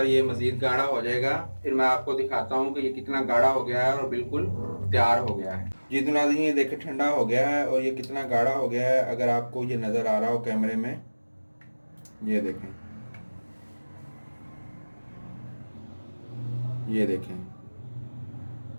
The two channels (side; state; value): both; inverted; correlation -1.00